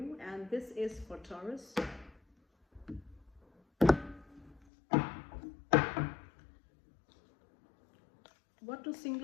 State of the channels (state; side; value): drops out; right; at 4.6 s